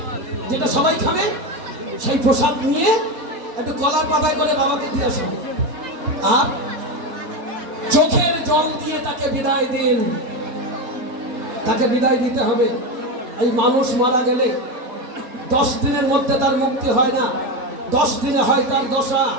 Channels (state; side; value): late; left; 4.3 ms